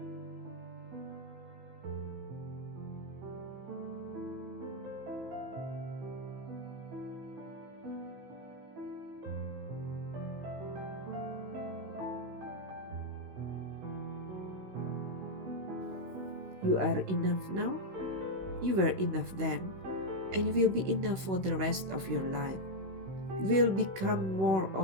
you are enough now, you were enough then, and you will be enough for the rest of your life. You will become more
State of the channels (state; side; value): late; left; 15 ms